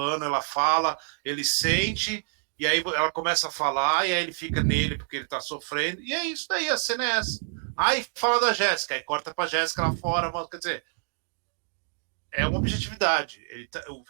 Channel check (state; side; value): silent; left; 60 dB below the other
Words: ela fala, ele sente, e aí ela começa a falar, e aí ele fica nele porque ele tá sofrendo, e é isso daí, a cena é essa. Aí fala da Jéssica, aí corta pra Jéssica lá fora, quer dizer, é uma objetividade. O